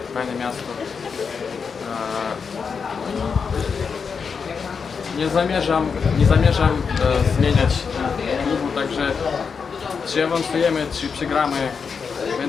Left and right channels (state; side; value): quieter; right; 5.8 dB